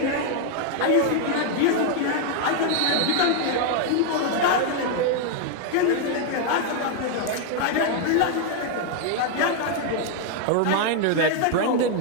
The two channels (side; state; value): both; different; correlation 0.00